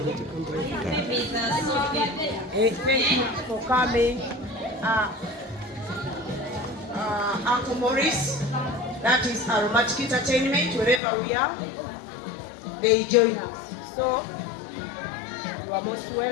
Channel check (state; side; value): drops out; right; at 11.0 s